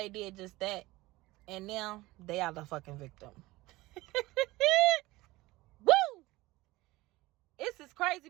did just that. And now they are the fucking victim. Woo! This is crazy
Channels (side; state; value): left; quieter; 19.5 dB